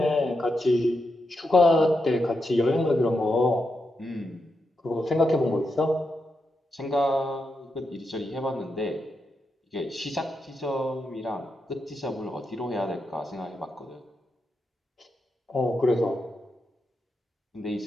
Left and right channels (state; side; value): normal; both; correlation 0.85